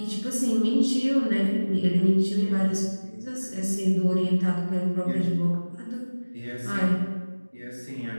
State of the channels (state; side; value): inverted; both; correlation -1.00